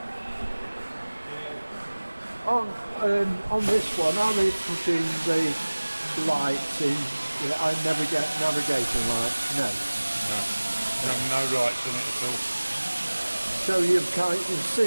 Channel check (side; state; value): both; inverted; correlation -1.00